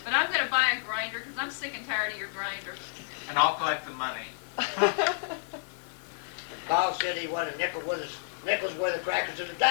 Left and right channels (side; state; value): right; silent; 58 dB below the other